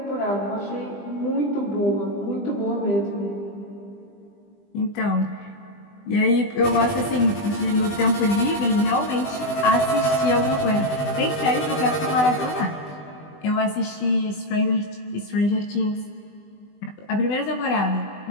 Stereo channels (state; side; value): late; right; 20 ms